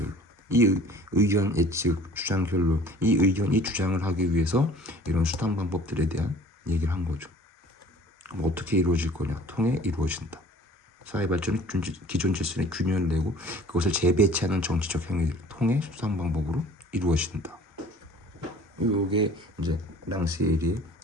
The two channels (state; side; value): normal; both; correlation 0.48